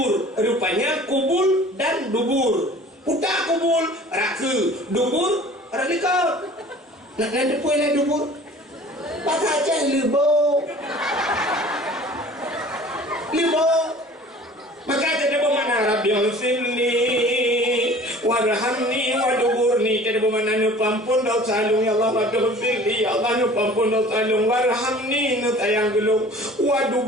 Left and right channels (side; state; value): both; normal; correlation 0.46